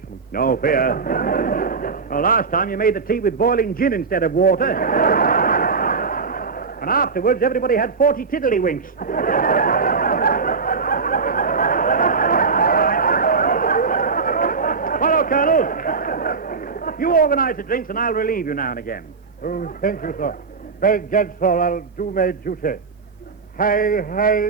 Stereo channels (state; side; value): quieter; left; 4.9 dB